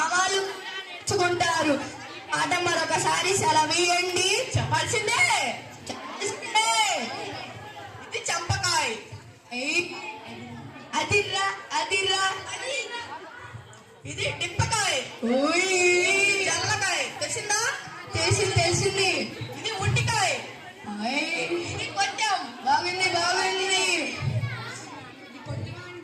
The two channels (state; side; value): identical; both; correlation 1.00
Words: వాళ్ళు చుకుంటారు ఆట మరొకసారి సెలవియండి చెప్పాల్సిందే ఇది చంపకాయ అదిరా ఇది డిప్పకాయ జల్లకాయ తెలిసిందా తెలిసింది ఇది ఉట్టికాయ ఇది కొంచెం బాగుంది